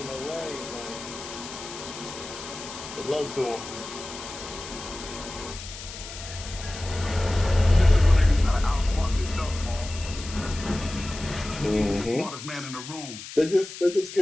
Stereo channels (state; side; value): noise; left; hiss, 12 dB below the sound